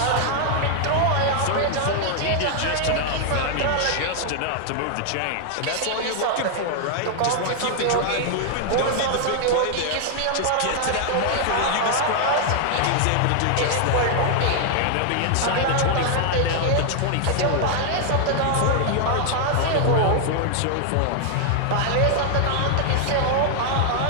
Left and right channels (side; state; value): both; different; correlation 0.00